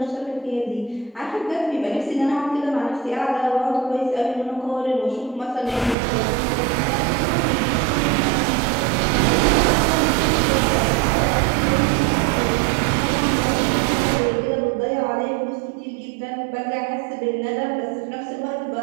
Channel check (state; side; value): drops out; left; at 6.0 s